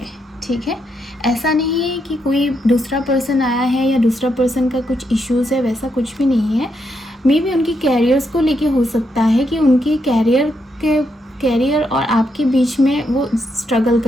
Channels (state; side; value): normal; both; correlation 0.80